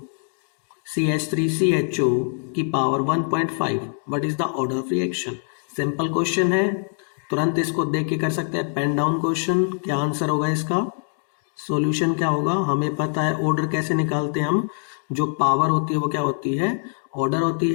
CH3CHO की power 1.5. What is the order of reaction? Simple question है, तुरंत इसको देख के कर सकते हैं। Pen down question. क्या आंसर होगा इसका? सॉल्यूशन क्या होगा? हमें पता है ऑर्डर कैसे निकालते हैं हम। जो पावर होती है वो क्या होती है? ऑर्डर होती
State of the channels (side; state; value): right; silent; 63 dB below the other